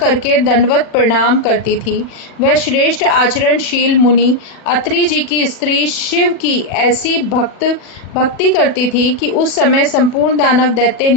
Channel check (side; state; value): right; late; 40 ms